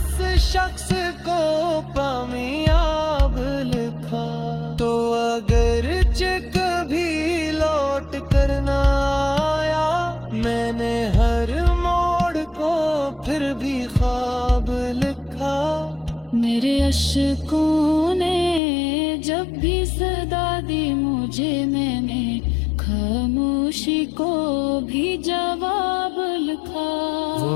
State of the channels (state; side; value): drops out; right; at 18.6 s